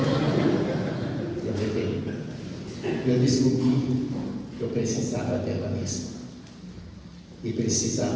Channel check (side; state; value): both; identical; correlation 1.00